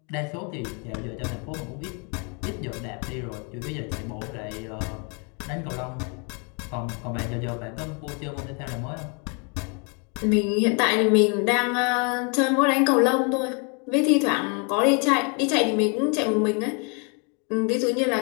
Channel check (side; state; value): right; quieter; 35.9 dB